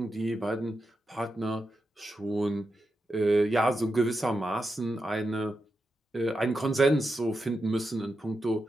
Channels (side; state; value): both; normal; correlation 0.88